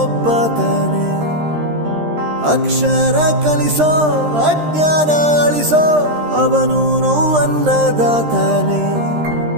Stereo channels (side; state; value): left; late; 13 ms